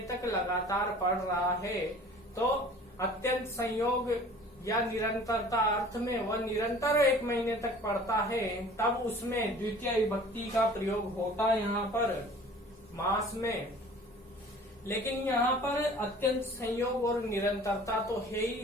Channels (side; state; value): both; normal; correlation 0.47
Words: तक लगातार पढ़ रहा है। तो अत्यंत संयोग या निरंतरता अर्थ में वह निरंतर 1 महीने तक पढ़ता है, तब उसमें द्वितीय विभक्ति का प्रयोग होता है यहाँ पर मास में। लेकिन यहाँ पर अत्यंत संयोग और निरंतरता तो है